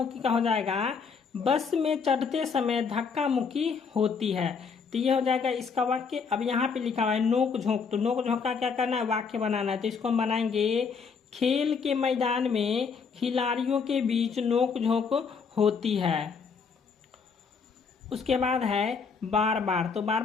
का हो जाएगा बस में चढ़ते समय धक्का मुक्की होती है, तो ये हो जाएगा इसका वाक्य। अब यहाँ पे लिखा हुआ है नोक झोंक, तो नोक झोंक का क्या करना है वाक्य बनाना है, तो इसको हम बनाएंगे खेल के मैदान में खिलाड़ियों के बीच नोक झोंक होती है। उसके बाद है बार बार, तो बार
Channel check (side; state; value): right; quieter; 5.6 dB